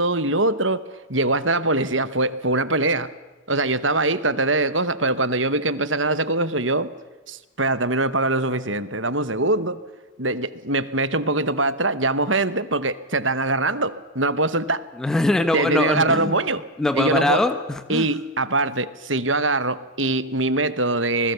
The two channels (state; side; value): normal; both; correlation -0.08